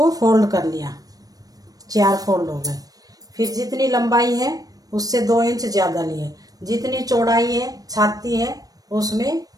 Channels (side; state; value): left; late; 0.18 ms